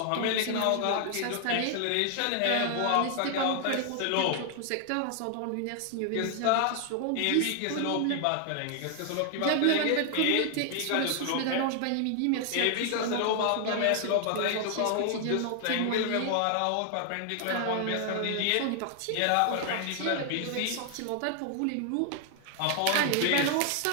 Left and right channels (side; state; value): both; different; correlation 0.00